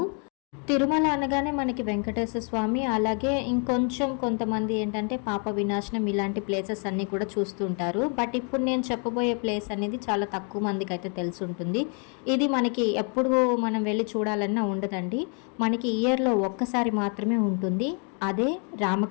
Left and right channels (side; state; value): right; quieter; 38.8 dB